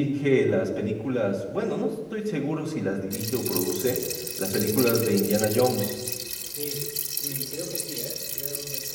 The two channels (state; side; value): identical; both; correlation 1.00